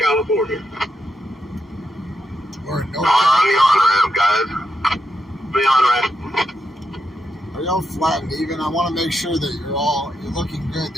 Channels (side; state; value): both; normal; correlation 0.83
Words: We're in North on the on-ramp, guys. The on-ramp. Are y'all flat and even? I want to make sure that you're looking good